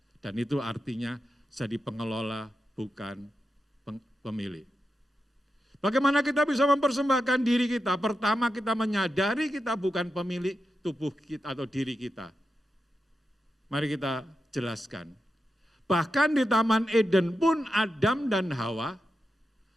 Dan itu artinya jadi pengelola bukan pemilik. Bagaimana kita bisa mempersembahkan diri kita? Pertama kita menyadari kita bukan pemilik tubuh kita atau diri kita. Mari kita jelaskan. Bahkan di Taman Eden pun Adam dan Hawa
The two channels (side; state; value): both; normal; correlation 0.89